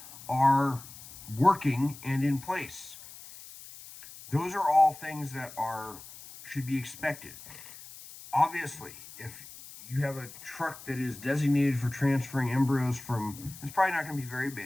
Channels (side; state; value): left; noise; hiss, 16 dB below the sound